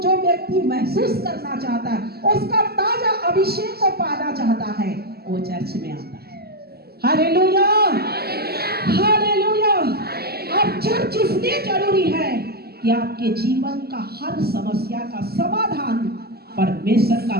व्यक्ति महसूस करना चाहता है, उसका ताजा अभिषेक को पाना चाहता है, वो चर्च में आता है। Hallelujah, hallelujah. और चर्च इसलिए जरूरी है कि आपके जीवन का हर समस्या का समाधान परमेश्वर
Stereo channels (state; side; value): late; left; 0.46 ms